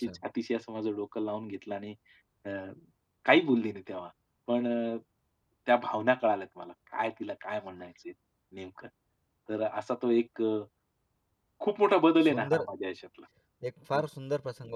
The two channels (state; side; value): identical; both; correlation 1.00